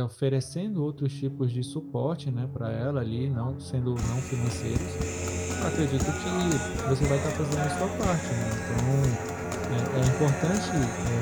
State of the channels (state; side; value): identical; both; correlation 1.00